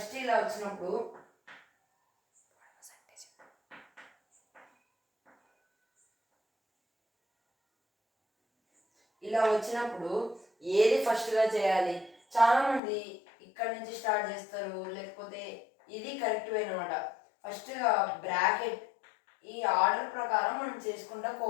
ఇలా వచ్చినప్పుడు ఇలా వచ్చినప్పుడు ఏది ఫస్ట్గా చేయాలి? చాలామంది ఇక్కడ నుంచి స్టార్ట్ చేస్తారు, లేకపోతే ఇది కరెక్ట్ వే అనమాట. ఫస్ట్గా బ్రాకెట్ ఈ ఆర్డర్ ప్రకారం మనం చేసుకుంటూ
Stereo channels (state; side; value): drops out; right; at 12.8 s